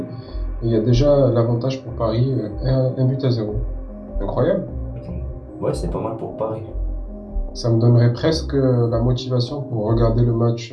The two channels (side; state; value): both; identical; correlation 1.00